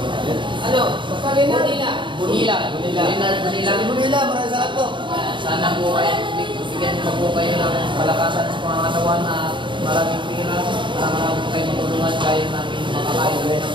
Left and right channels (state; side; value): late; left; 0.23 ms